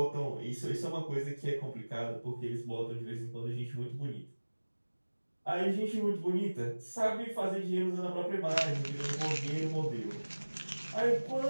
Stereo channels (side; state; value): both; inverted; correlation -1.00